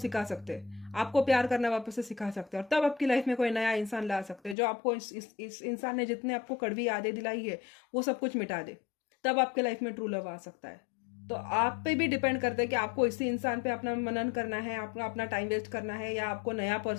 सकते हैं, आपको प्यार करना वापस से सिखा सकते हैं, और तब आपकी लाइफ में कोई नया इंसान ला सकते हैं, जो आपको इस इंसान ने जितने आपको कड़वी यादें दिलाई है वो सब कुछ मिटा दे। तब आपके लाइफ में ट्रू लव आ सकता है। तो आप पे भी डिपेंड करता है कि आपको इसी इंसान पे अपना मनन करना है, आपको अपना टाइम वेस्ट करना है, या आपको नया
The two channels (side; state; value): right; drops out; at 4.5 s